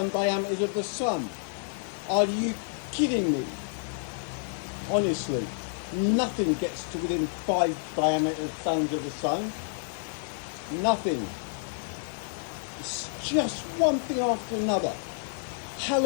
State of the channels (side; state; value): right; silent; digital silence